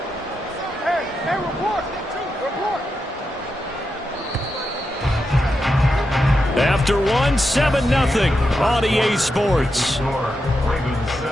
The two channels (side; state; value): both; normal; correlation 0.86